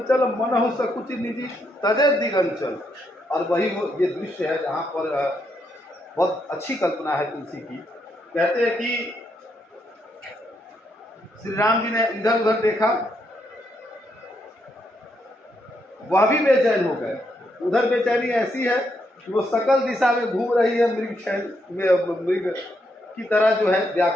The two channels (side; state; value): both; normal; correlation 0.78